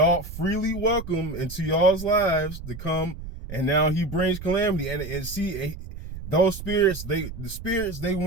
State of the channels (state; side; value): noise; right; rumble, 10 dB below the sound